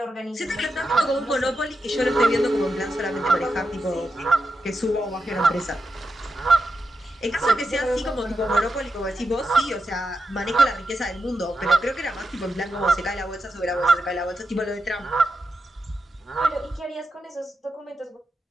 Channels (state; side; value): normal; both; correlation 0.86